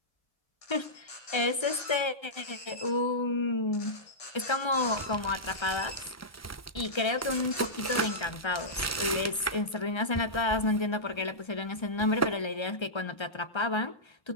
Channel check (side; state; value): right; late; 1.3 ms